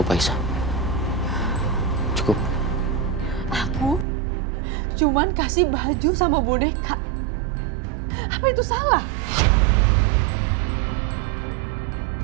Aisyah. Cukup. Aku cuman kasih baju sama boneka. Apa itu salah?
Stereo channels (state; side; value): drops out; left; at 4.0 s